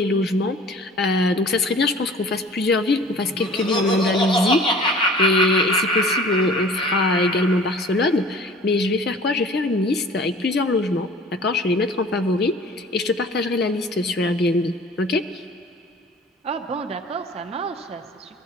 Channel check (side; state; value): both; normal; correlation 0.46